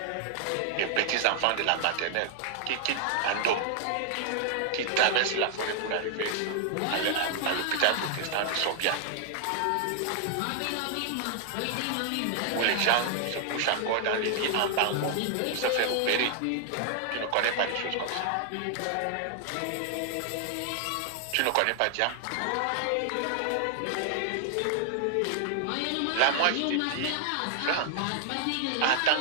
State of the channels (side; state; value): both; different; correlation 0.00